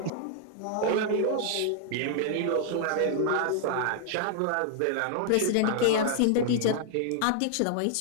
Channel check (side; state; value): both; different; correlation -0.01